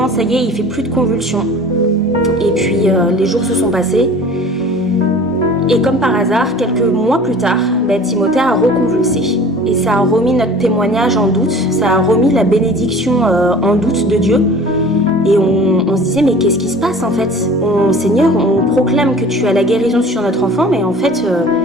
Ça y est, il fait plus de convulsions. Et puis les jours se sont passés. Et comme par hasard, quelques mois plus tard, Timothée a reconvulsé. Et ça a remis notre témoignage en doute, ça a remis la bénédiction en doute de Dieu. Et on se disait, mais qu'est-ce qui se passe en fait? Seigneur, on proclame que tu as la guérison sur notre enfant, mais en fait,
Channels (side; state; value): both; normal; correlation 0.44